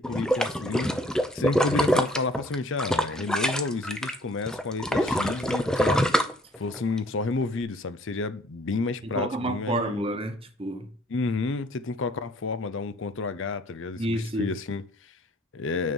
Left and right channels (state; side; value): normal; both; correlation 0.58